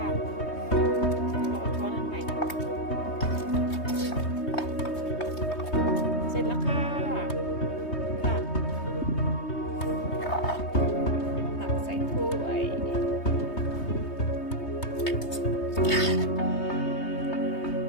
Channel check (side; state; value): right; late; 3.2 ms